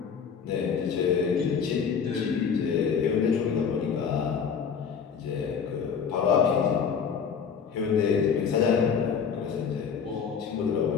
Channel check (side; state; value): right; quieter; 6.7 dB